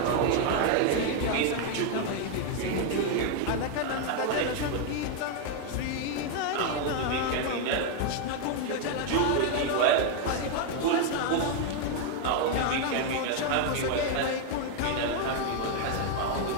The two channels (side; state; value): both; different; correlation 0.01